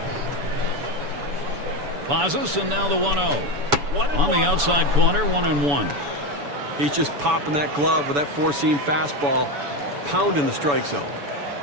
Pazos, and now the 1-0. On the outside corner, 1-1. He's just popping that glove with that four-seam fastball, pounding the strike zone.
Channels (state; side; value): late; left; 7.0 ms